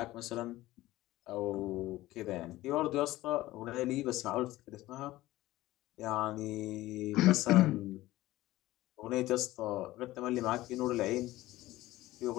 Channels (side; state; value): right; quieter; 17.0 dB